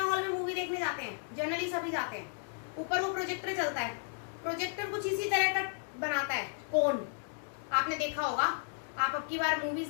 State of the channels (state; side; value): silent; right; digital silence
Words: हॉल में मूवी देखने जाते हैं, जनरली सभी जाते हैं, ऊपर वो प्रोजेक्टर चलता है, प्रोजेक्टर कुछ इसी तरह का बनाता है, कोन, आपने देखा होगा। आप अब की बार मूवीज